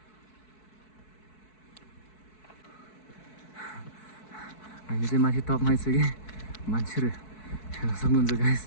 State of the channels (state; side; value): late; right; 4.6 ms